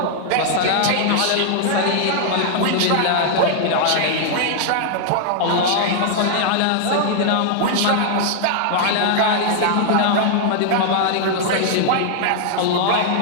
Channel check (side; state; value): both; different; correlation -0.01